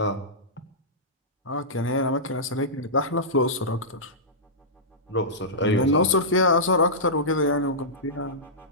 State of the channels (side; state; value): both; normal; correlation -0.16